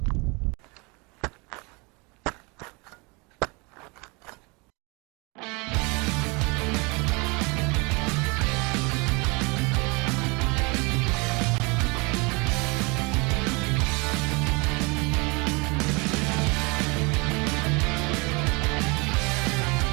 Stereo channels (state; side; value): quieter; left; 28.5 dB